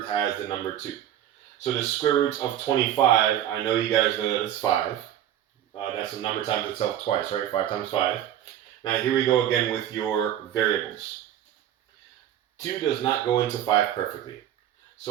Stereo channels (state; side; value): quieter; left; 11.2 dB